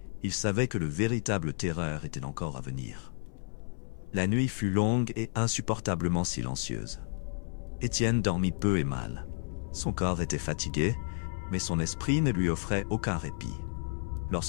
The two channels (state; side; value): silent; right; 57 dB below the other